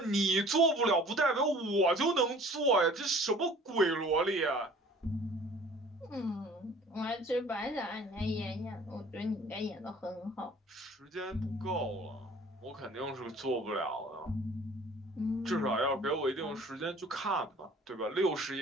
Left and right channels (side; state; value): both; normal; correlation 0.50